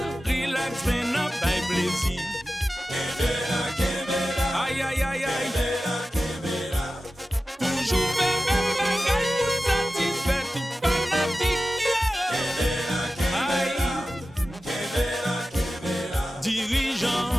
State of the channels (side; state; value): both; normal; correlation 0.94